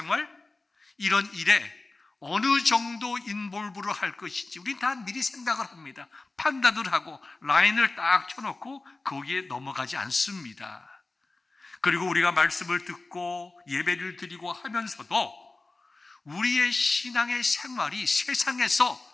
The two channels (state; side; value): quieter; right; 3.4 dB